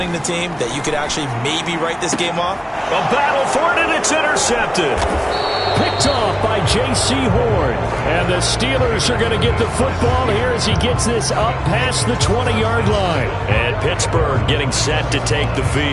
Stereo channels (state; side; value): identical; both; correlation 1.00